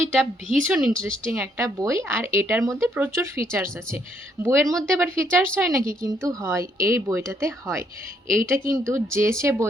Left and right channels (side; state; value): both; normal; correlation 0.70